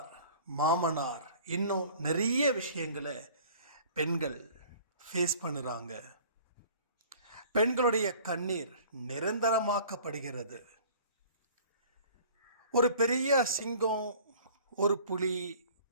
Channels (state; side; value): inverted; both; correlation -0.49